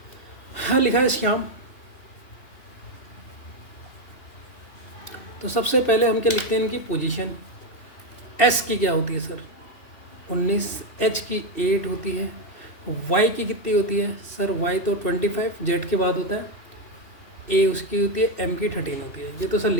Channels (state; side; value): late; right; 2.7 ms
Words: हाँ लिखा है श्याम। तो सबसे पहले हम क्या लिखते हैं? इनकी पोजीशन। S की क्या होती है सर? 19, H की 8 होती है, Y की कितनी होती है सर? Y तो 25 Z के बाद होता है, A उसकी होती है, M की 13 होती है। ये तो सर